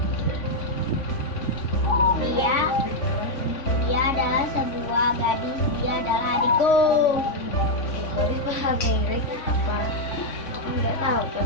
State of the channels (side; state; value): right; late; 3.5 ms